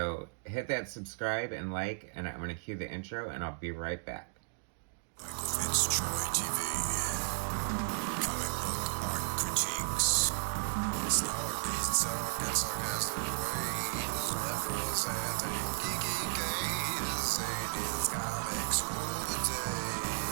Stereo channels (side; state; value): left; silent; digital silence